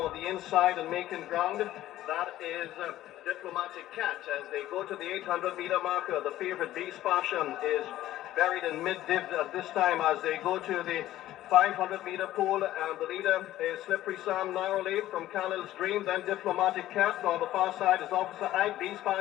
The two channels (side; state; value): right; quieter; 14.2 dB